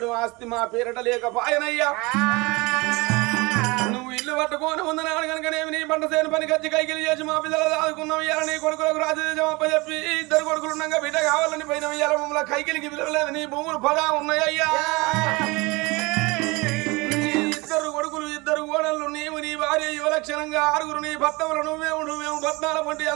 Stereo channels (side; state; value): left; quieter; 24.8 dB